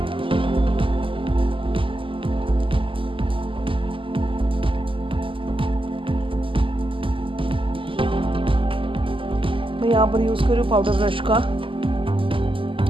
मैं यहाँ पर यूज़ कर रही हूँ पाउडर ब्रश का।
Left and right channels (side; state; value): left; late; 0.25 ms